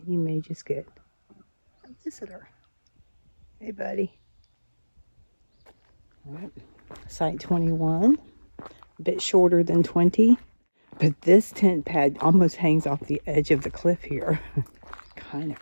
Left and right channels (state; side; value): inverted; both; correlation -1.00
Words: you may just get a visitor. Hey, buddy. All right. Site 21, a bit shorter than 20, but this tent pad almost hangs off the edge of the cliff here. Kind of